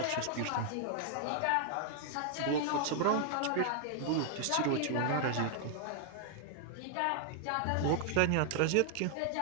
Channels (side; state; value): both; different; correlation 0.00